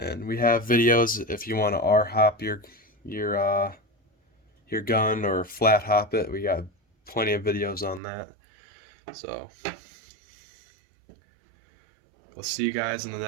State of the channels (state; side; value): drops out; left; at 8.0 s